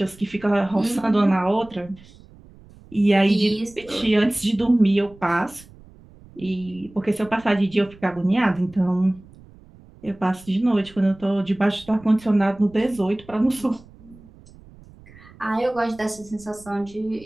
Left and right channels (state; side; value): noise; right; rumble, 23 dB below the sound